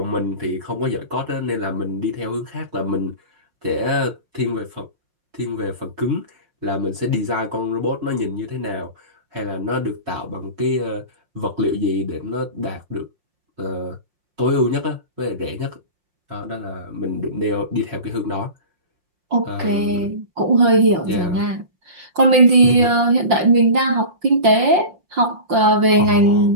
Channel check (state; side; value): late; left; 5.7 ms